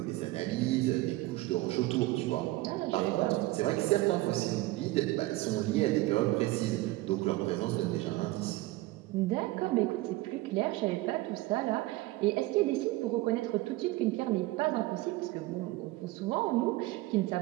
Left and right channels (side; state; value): left; quieter; 18.8 dB